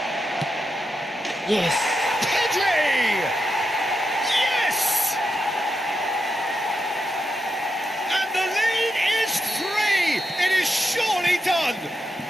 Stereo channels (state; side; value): normal; both; correlation 0.85